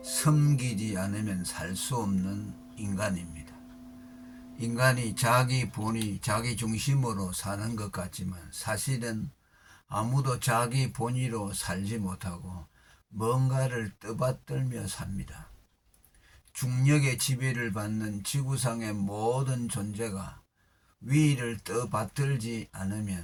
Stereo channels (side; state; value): both; identical; correlation 1.00